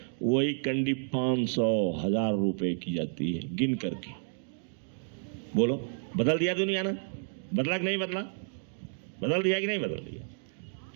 वही कंडी 500-1000 रुपए की जाती है गिन करके। बोलो, बदल दिया दुनिया ना? बदला कि नहीं बदला? बदल दिया कि नहीं बदल दिया?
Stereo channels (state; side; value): silent; left; digital silence